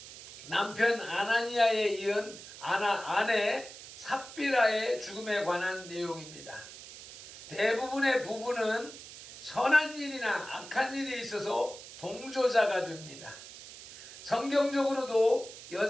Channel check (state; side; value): noise; right; hiss, 15 dB below the sound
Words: 남편 아나니아에 이은 아내 삽비라의 죽음에 관한 내용입니다. 대부분의 부부는 선한 일이나 악한 일이 있어서 동조자가 됩니다. 성경적으로도